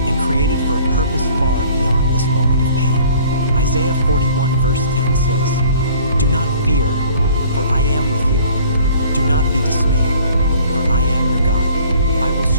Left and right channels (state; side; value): inverted; both; correlation -0.53